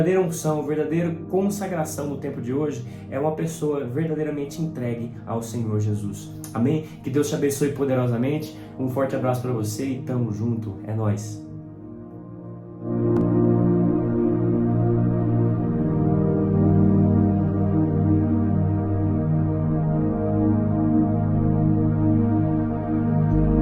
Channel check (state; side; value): identical; both; correlation 1.00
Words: unção, a verdadeira consagração no tempo de hoje é uma pessoa verdadeiramente entregue ao Senhor Jesus. Amém? Que Deus te abençoe poderosamente. Um forte abraço para você e tamo junto. É nóis.